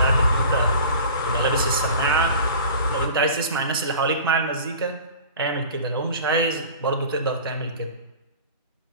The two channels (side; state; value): both; inverted; correlation -0.40